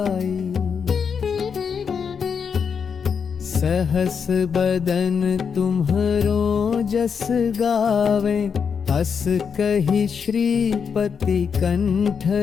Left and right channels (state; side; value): quieter; right; 6.5 dB